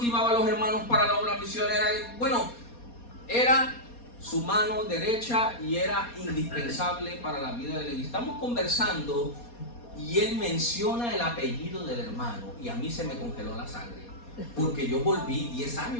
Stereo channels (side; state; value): right; late; 4.2 ms